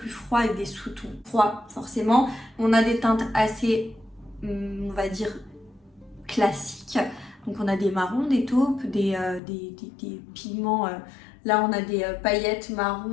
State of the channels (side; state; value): right; drops out; at 9.4 s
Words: froid avec des sous-tons froids, forcément. On a des teintes assez, on va dire, classiques. Donc, on a des marrons, des taupes, des pigments... Là, on a des paillettes